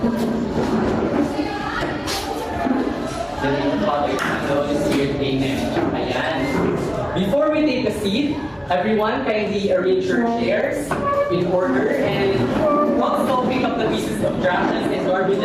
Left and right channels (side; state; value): both; identical; correlation 1.00